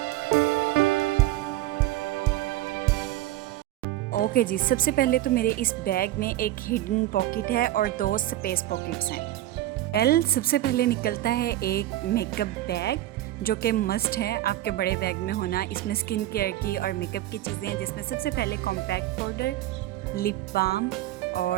ओके जी, सबसे पहले तो मेरे इस बैग में एक हिडन पॉकेट है और 2 स्पेस पॉकेट्स हैं। सबसे पहले निकलता है एक मेकअप बैग जो कि मस्ट है आपके बड़े बैग में होना। इसमें स्किन केयर की और मेकअप की चीज़ें हैं, जिसमें सबसे पहले कॉम्पैक्ट पाउडर, लिप बाम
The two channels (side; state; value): left; quieter; 14.8 dB